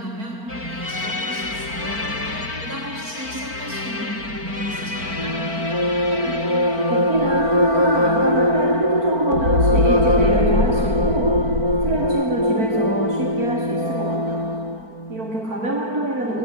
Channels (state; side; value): late; left; 4.4 ms